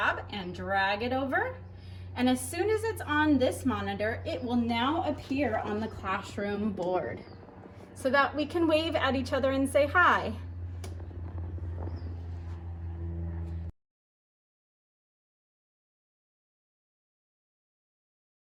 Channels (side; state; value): both; identical; correlation 1.00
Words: and drag it over. And as soon as it's on this monitor, it will now appear on the classroom board so that we can wave at each other and say hi.